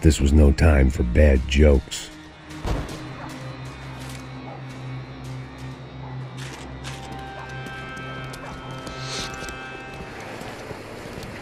this was no time for bad jokes.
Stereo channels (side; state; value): both; identical; correlation 1.00